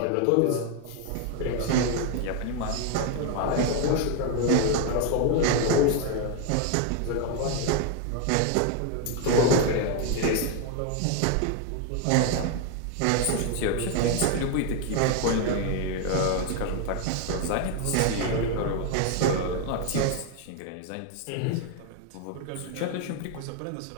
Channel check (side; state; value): both; different; correlation 0.00